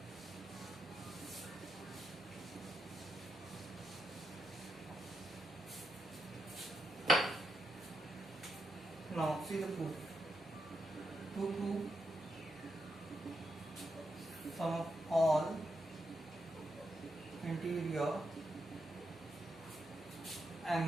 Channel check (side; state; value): left; noise; hum, 26 dB below the sound